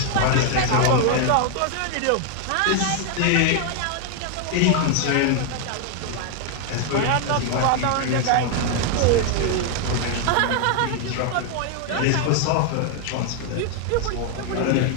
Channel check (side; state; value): both; different; correlation 0.00